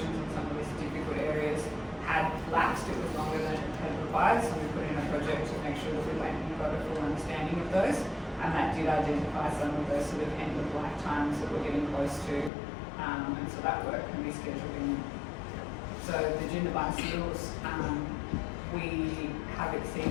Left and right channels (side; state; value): right; drops out; at 12.5 s